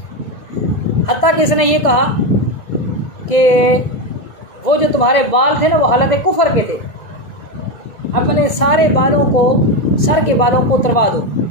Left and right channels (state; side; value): late; right; 2.2 ms